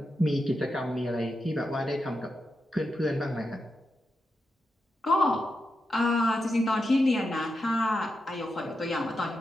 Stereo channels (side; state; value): both; normal; correlation 0.87